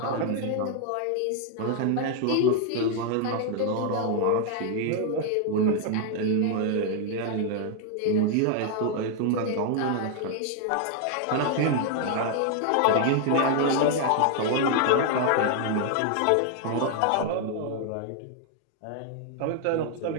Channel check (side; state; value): both; different; correlation 0.00